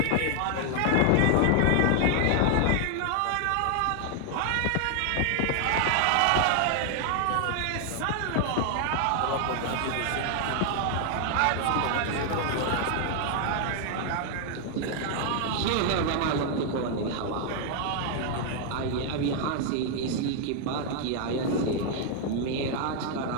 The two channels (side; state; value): both; different; correlation 0.00